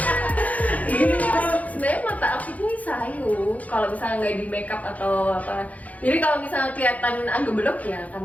Ini sebenarnya mata aku ini sayu kalau misalnya nggak di makeup atau apa. Jadi kalau misalnya kelihatan agak belok ya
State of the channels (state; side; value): late; right; 0.073 ms